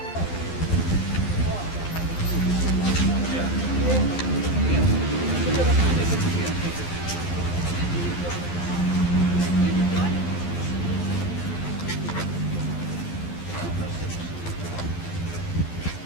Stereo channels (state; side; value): late; right; 12 ms